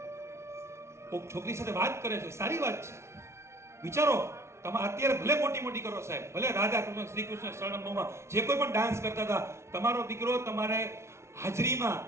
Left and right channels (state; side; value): late; left; 0.13 ms